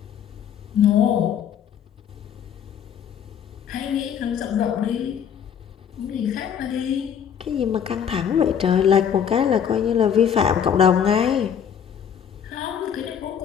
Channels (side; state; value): right; quieter; 8.4 dB